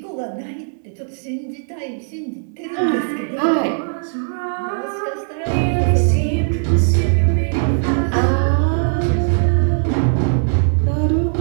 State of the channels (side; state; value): left; silent; 67 dB below the other